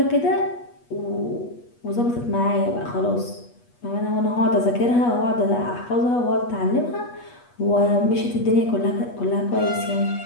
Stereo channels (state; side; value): late; right; 8.3 ms